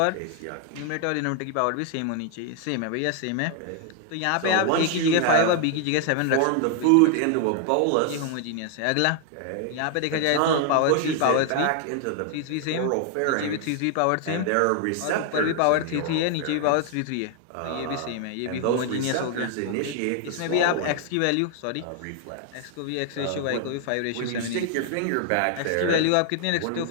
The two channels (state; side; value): different; both; correlation 0.00